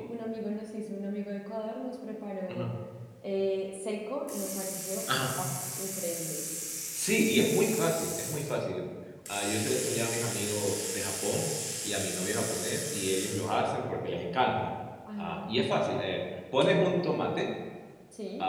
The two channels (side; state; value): both; identical; correlation 1.00